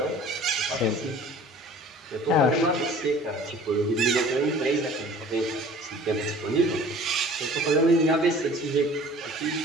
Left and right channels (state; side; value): normal; both; correlation 0.47